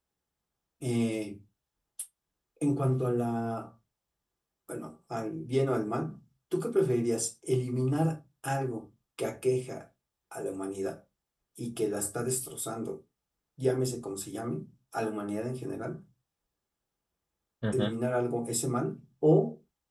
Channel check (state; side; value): identical; both; correlation 1.00